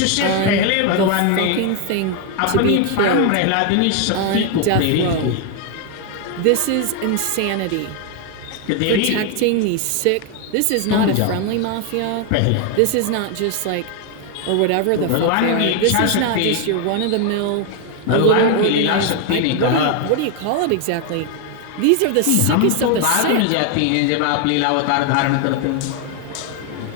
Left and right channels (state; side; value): different; both; correlation 0.01